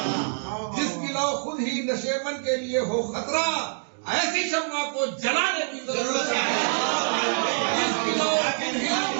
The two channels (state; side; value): silent; left; digital silence